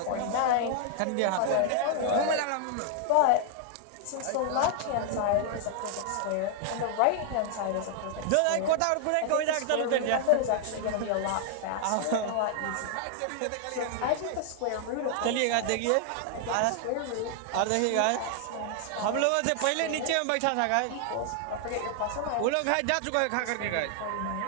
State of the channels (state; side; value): different; both; correlation 0.00